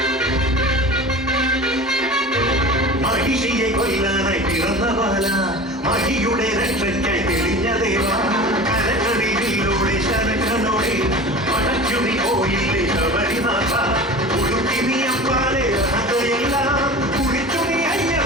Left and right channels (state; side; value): normal; both; correlation 0.35